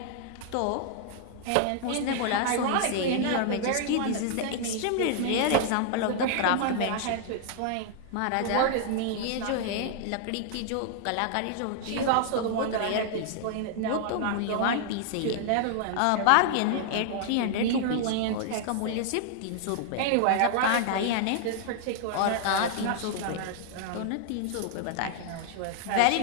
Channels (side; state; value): both; different; correlation -0.01